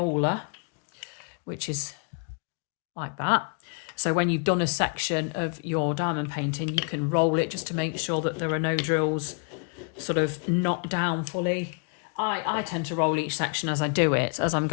which is like that. So when you've done a section of your diamond painting, you can roll it just to make sure that there are no drills sort of knocked down fully. I tend to roll each section as I do it, as I'm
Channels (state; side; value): quieter; right; 39.0 dB